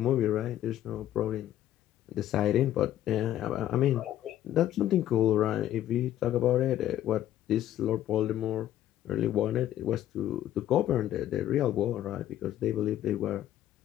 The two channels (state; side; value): quieter; right; 12.4 dB